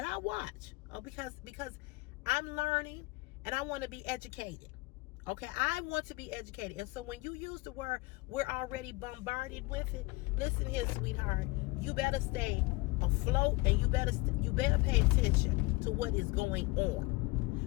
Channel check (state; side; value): quieter; right; 23.5 dB